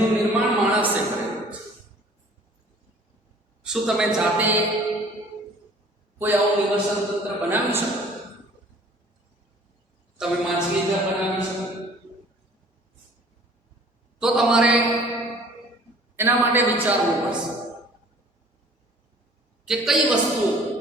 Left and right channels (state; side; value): normal; both; correlation 0.51